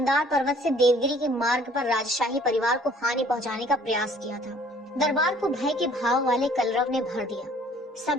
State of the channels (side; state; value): both; normal; correlation 0.56